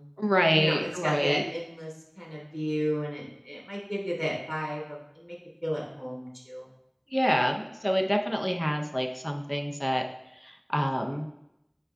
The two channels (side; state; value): both; identical; correlation 1.00